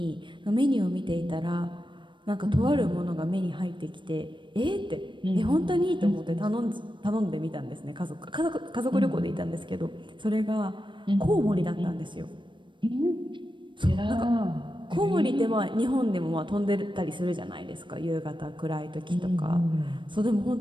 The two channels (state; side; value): late; left; 0.23 ms